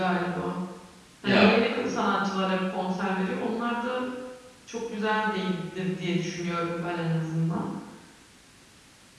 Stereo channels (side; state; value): both; identical; correlation 1.00